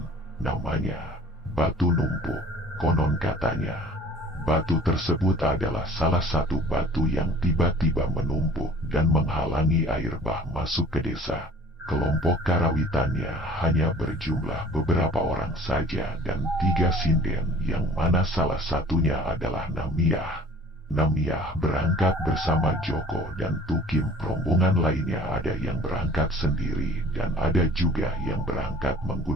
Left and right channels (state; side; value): normal; both; correlation 0.49